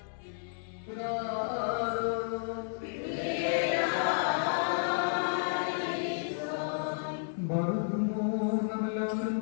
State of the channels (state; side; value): silent; right; digital silence